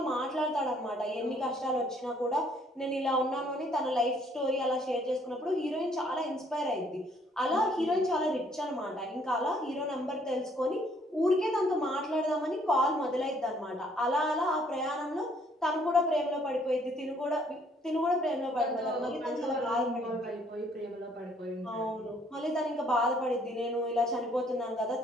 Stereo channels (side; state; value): both; normal; correlation 0.64